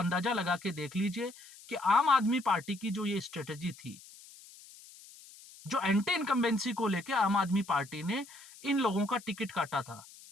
लगा के देख लीजिए कि आम आदमी पार्टी की जो ये स्ट्रेटेजी थी, जो एंटी इनकम्बेंसी को लेकर आम आदमी पार्टी ने इन लोगों का टिकट काटा था,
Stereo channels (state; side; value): noise; left; hiss, 20 dB below the sound